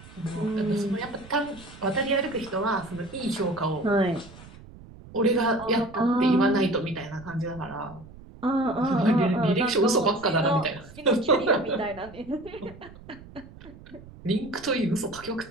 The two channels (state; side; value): noise; right; rumble, 19 dB below the sound